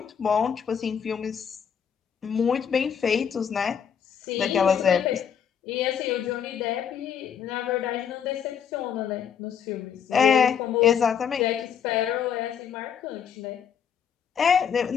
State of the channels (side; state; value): right; quieter; 7.9 dB